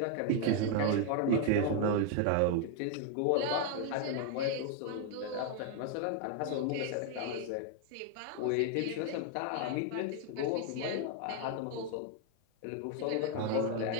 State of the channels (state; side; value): different; both; correlation 0.01